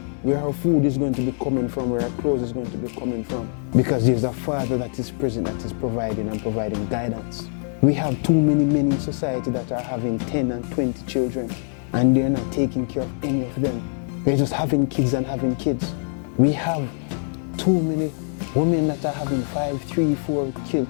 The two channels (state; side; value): silent; right; 58 dB below the other